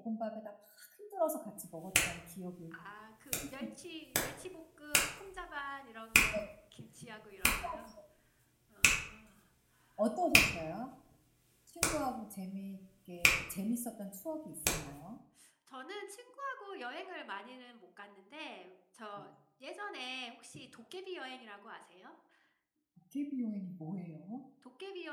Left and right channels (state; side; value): identical; both; correlation 1.00